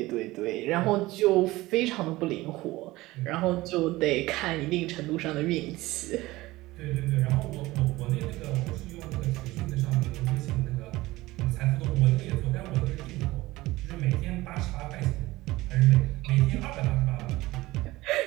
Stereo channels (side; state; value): left; quieter; 18.9 dB